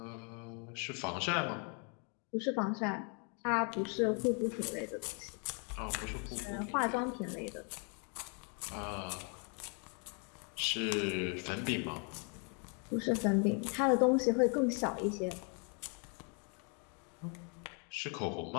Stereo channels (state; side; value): quieter; right; 37.6 dB